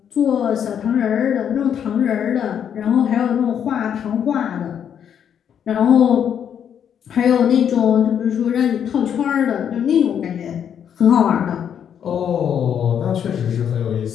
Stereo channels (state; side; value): quieter; right; 8.6 dB